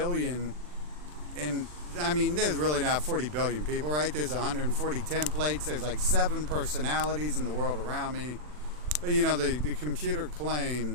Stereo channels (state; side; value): late; left; 40 ms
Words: and I mean, there's really not 40 billion people, right? There's 140 templates. There's like 7 personalities in the world around me. But you know, the computer